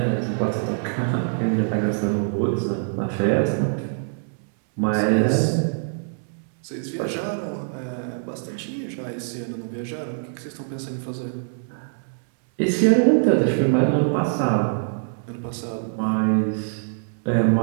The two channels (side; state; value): left; silent; digital silence